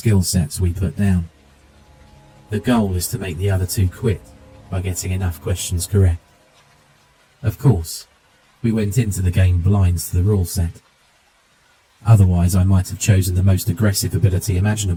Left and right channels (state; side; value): identical; both; correlation 1.00